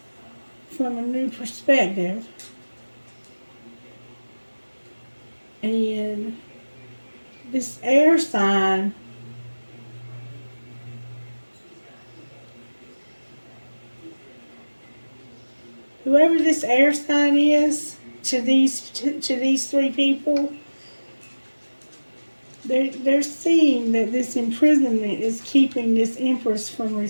from a new perspective. And this air sign whoever this air sign is to these three people, They're seeing that this imprisonment is keeping this Empress from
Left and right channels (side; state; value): both; inverted; correlation -1.00